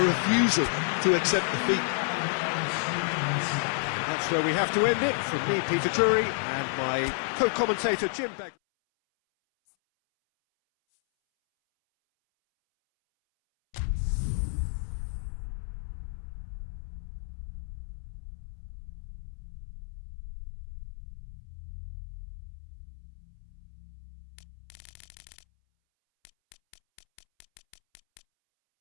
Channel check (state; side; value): silent; right; 57 dB below the other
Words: refusal to accept defeat. That's where we have to end it. From me, Peter Drury, and my co-commentator, Jim Begley.